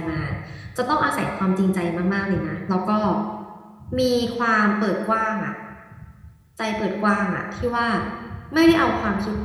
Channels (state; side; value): identical; both; correlation 1.00